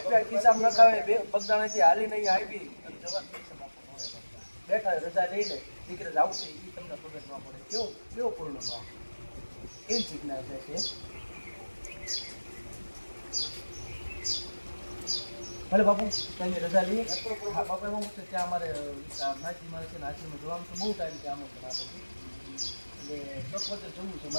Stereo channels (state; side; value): inverted; both; correlation -1.00